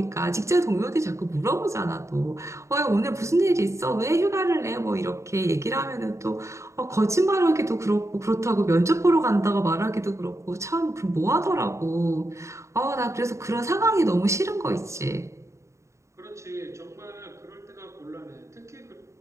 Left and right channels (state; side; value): late; left; 0.14 ms